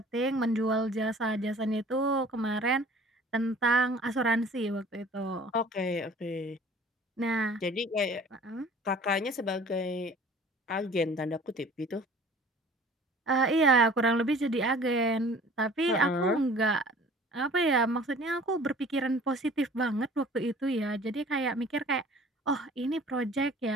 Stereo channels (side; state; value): both; normal; correlation 0.48